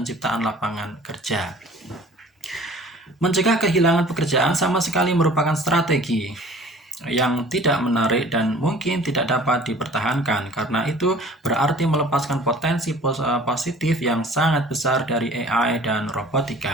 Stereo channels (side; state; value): both; normal; correlation 0.48